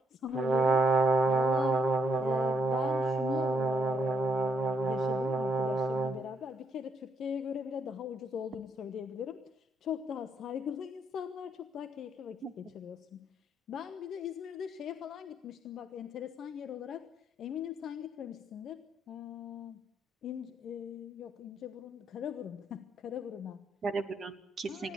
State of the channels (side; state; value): both; normal; correlation 0.74